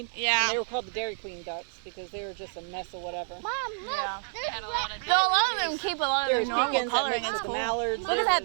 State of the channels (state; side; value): silent; left; digital silence